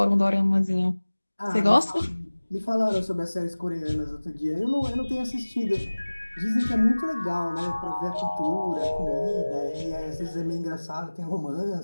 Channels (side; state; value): both; inverted; correlation -1.00